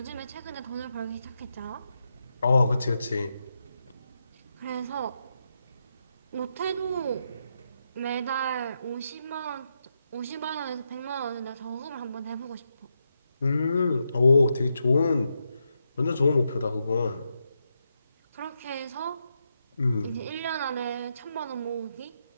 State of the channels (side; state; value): both; inverted; correlation -0.84